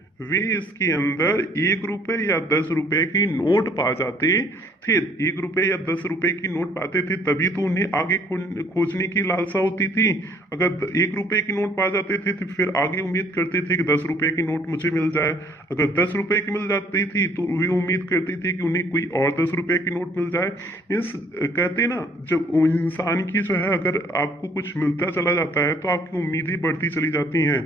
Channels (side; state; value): both; normal; correlation 0.60